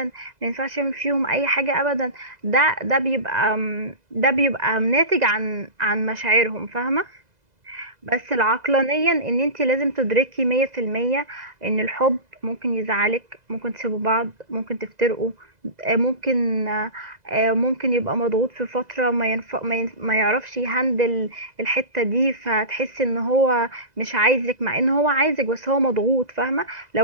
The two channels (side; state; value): left; late; 2.0 ms